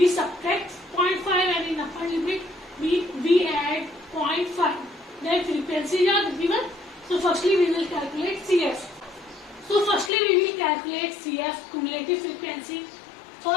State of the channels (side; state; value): right; drops out; at 10.1 s